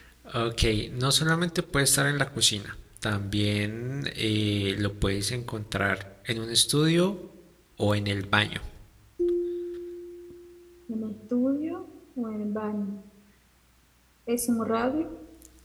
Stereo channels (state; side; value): identical; both; correlation 1.00